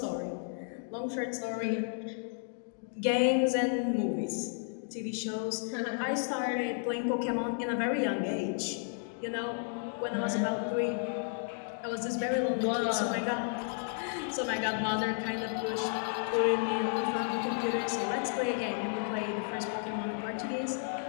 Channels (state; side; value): silent; right; 56 dB below the other